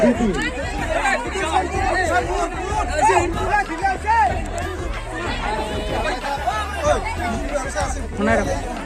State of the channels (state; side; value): identical; both; correlation 1.00